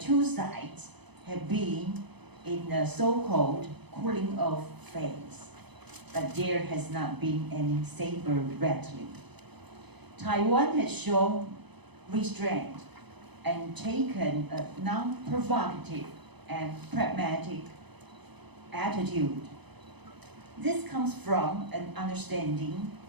sides have been in a so-called cooling off phase, but there has not been any saber rattling. Taiwan has shown restraint and taken a non-provocative and pragmatic attitude. This comes from an understanding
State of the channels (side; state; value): left; late; 0.99 ms